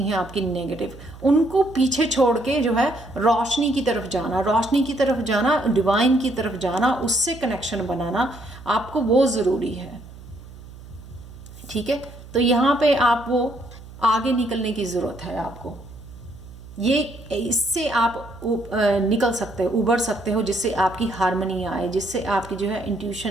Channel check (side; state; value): right; noise; hum, 17 dB below the sound